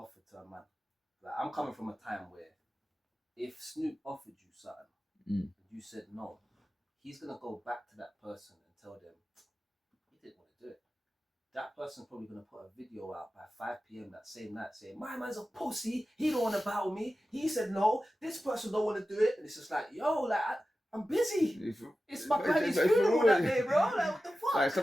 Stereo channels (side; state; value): both; normal; correlation 0.94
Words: to a man. Like, I'm coming from a time where if Snoop offered you something and you said no, he's gonna go back to that person and tell them he didn't want to do it. That person's probably gonna put a video out by 5 p.m. that same night saying, my man's a pussy, he don't want to battle me, he said no, this person don't want to do it. And it's just like, yo, like, I'm busy. It's my granny's funeral that day, bro. Like, what the fuck? Like,